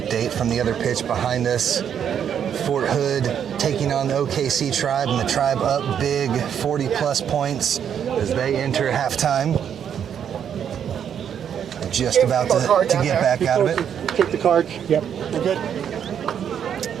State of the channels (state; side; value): quieter; left; 8.6 dB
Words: from the other pitch behind us. Fort Hood taking on the OKC Tribe, and the Tribe up big, 40-plus points as they enter halftime. Just about to get back out of it. Take the card. Yep, we're good.